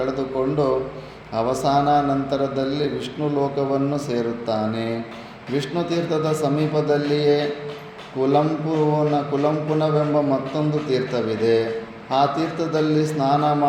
ಅವಸಾನ ನಂತರದಲ್ಲಿ ವಿಷ್ಣು ಲೋಕವನ್ನು ಸೇರುತ್ತಾನೆ. ವಿಷ್ಣು ತೀರ್ಥದ ಸಮೀಪದಲ್ಲಿಯೇ ಕುಲಂಪುನವೆಂಬ ಮತ್ತೊಂದು ತೀರ್ಥವಿದೆ. ಆ ತೀರ್ಥದಲ್ಲಿ ಸ್ನಾನ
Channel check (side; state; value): both; identical; correlation 1.00